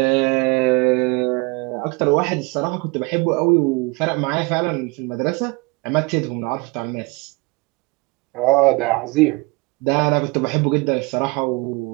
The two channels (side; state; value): left; quieter; 27.0 dB